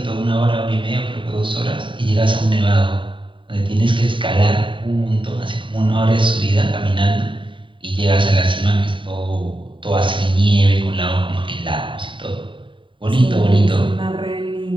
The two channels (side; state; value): left; late; 0.24 ms